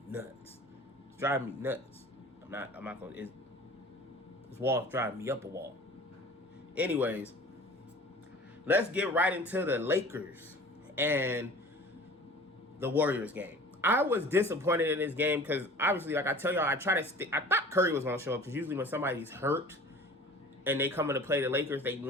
nuts. It's driving me nuts. I'm not gonna. This wall is driving me up a wall. Anyways, let's get right into the Lakers and the Warriors game. I was disappointed in this game because obviously, like I tell y'all, I thought Curry was gonna show up because usually when somebody's hurt and they come in to play the Lakers, they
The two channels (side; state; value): both; normal; correlation 0.43